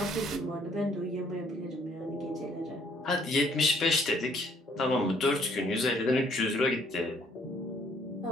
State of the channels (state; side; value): normal; both; correlation 0.63